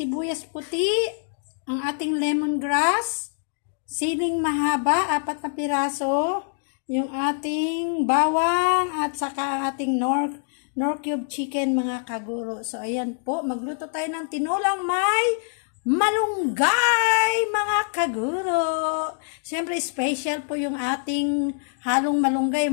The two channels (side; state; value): right; silent; digital silence